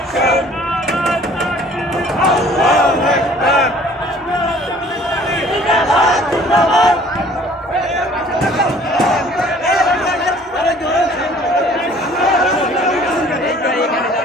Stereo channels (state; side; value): normal; both; correlation 0.53